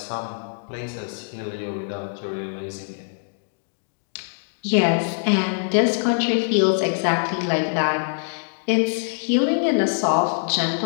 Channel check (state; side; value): silent; right; 63 dB below the other